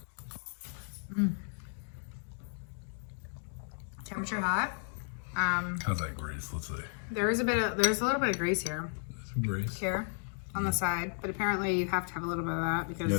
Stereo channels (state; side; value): silent; right; 55 dB below the other